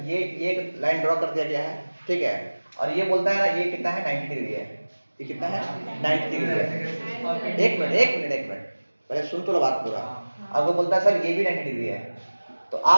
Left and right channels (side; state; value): both; inverted; correlation -1.00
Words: ये एक लाइन ड्रॉ कर दिया गया है, ठीक है, और ये बोलता है ना ये कितना है? 90 डिग्री है। ये कितना है? 90 डिग्री है। एक मिनट पहले सुन तो लो बात पूरा। अब वो बोलता है सर ये भी 90 डिग्री है, तो